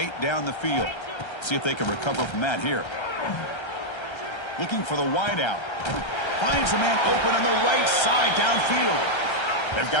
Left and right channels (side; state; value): right; late; 1.3 ms